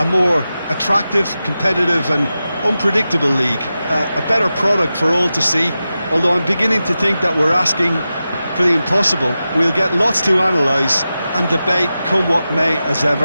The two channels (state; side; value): inverted; both; correlation -0.92